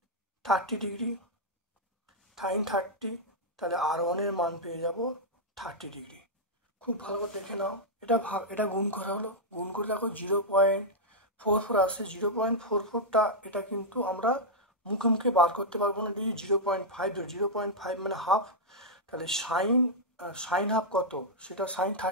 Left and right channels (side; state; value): both; normal; correlation -0.05